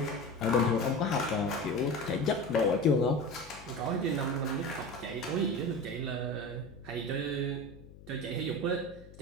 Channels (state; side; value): noise; left; hum, 19 dB below the sound